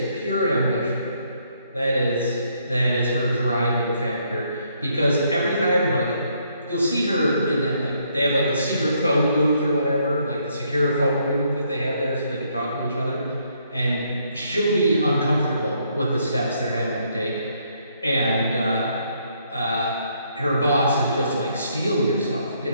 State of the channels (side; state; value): both; inverted; correlation -0.71